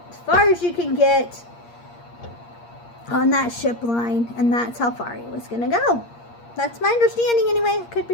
as far as you can get on that ship line, and that's how far he was going to go. That's my understanding anyway. I could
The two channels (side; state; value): right; late; 8.5 ms